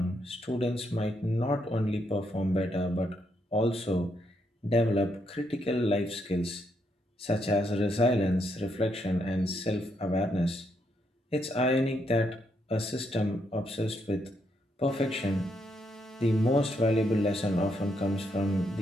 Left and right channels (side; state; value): both; normal; correlation 0.77